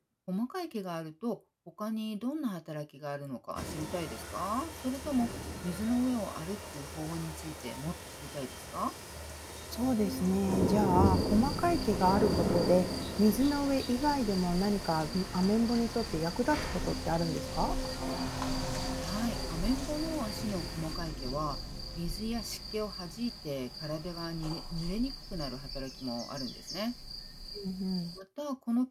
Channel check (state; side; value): identical; both; correlation 1.00